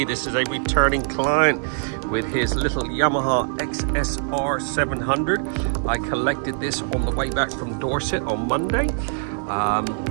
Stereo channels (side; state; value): left; silent; digital silence